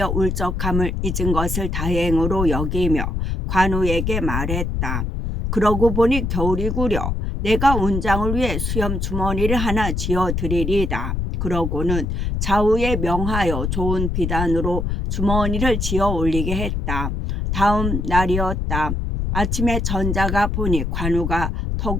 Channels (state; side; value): noise; left; rumble, 1 dB below the sound